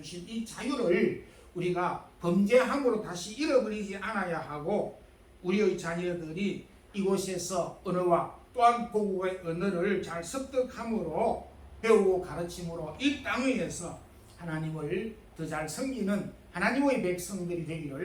이 자유를 우리가 범죄함으로 다시 잃어버리지 않아야 하고, 우리의 자녀들이 이곳에서 언어와 또한 고국의 언어를 잘 습득함으로 배우고 가르침으로 이 땅 위에서 하나님을 더 잘 섬기는 하나님의 백성들이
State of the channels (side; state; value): both; identical; correlation 1.00